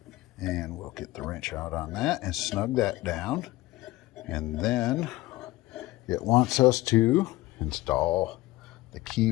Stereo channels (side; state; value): right; quieter; 18.1 dB